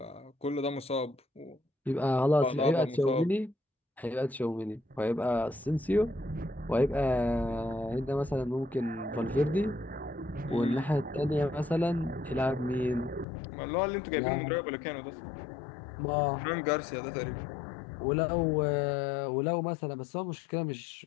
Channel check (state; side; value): drops out; right; at 13.2 s